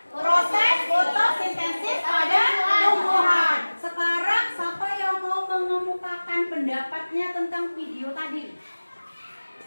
proses fotosintesis pada tumbuhan. Sekarang siapa yang mau mengemukakan pendapatnya tentang video tadi?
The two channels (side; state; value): both; inverted; correlation -1.00